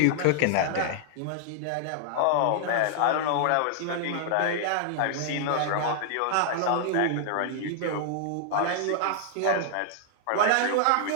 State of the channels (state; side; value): different; both; correlation -0.01